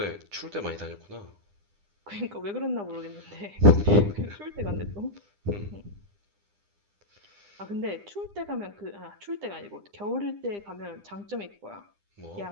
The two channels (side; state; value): left; late; 9.9 ms